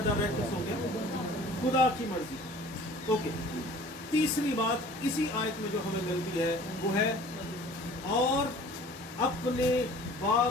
रहकर सो गया? खुदा की मर्जी। ओके, तीसरी बात इसी आयत में जो हमें मिलती है वो है और अपने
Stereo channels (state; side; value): normal; both; correlation 0.47